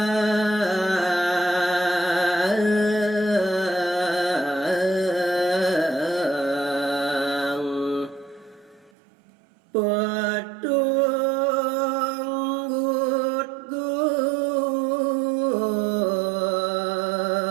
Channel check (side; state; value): left; drops out; at 8.9 s